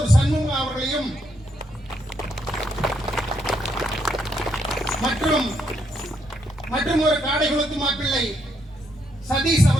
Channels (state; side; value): normal; both; correlation 0.76